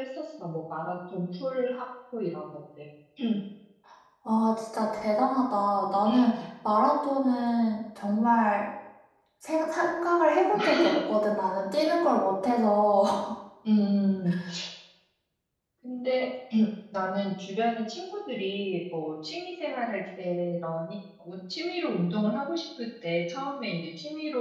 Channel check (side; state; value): both; identical; correlation 1.00